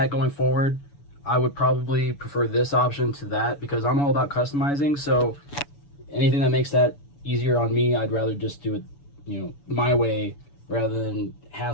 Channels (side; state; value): right; late; 7.0 ms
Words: going forward, I would probably prefer this option to that, because I'm all about customizing. So anything that makes that easier on me, I'd rather just do it, my way, rather than